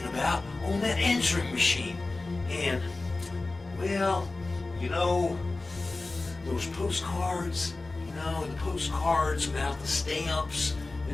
about on that answering machine. And, well, those postcards, the postcards without the stamps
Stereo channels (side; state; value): right; quieter; 3.3 dB